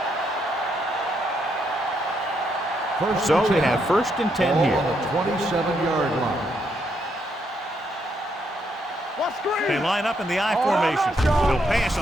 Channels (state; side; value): normal; both; correlation 0.76